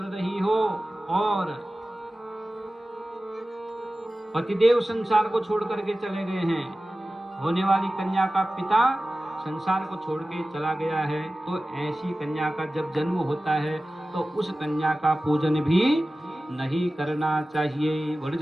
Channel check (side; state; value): both; normal; correlation 0.96